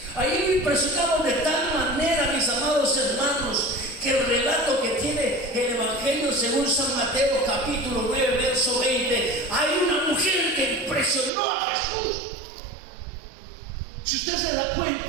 Ahí lo impresionamos de tal manera, mis amados hermanos, que el relato que tiene el Evangelio según San Mateo capítulo 9 verso 20, hay una mujer que impresionó a Jesús. Si usted se da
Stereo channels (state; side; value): drops out; left; at 11.3 s